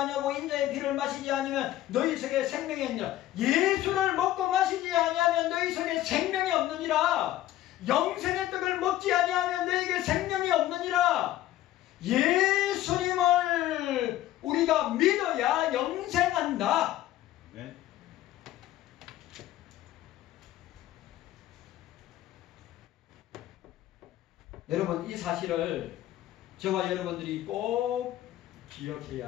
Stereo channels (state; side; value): quieter; right; 14.1 dB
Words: 인자의 피를 마시지 아니하면 너희 속에 생명이 없느니라. 예수를 먹고 마시지 아니하면 너희 속에 생명이 없느니라. 영생의 떡을 먹지 아니하면 너희에게 생명이 없느니라. 예수님을 우리가 믿어야 영생한다. 네. 여러분 이 사실을 저와 여러분들이 꼭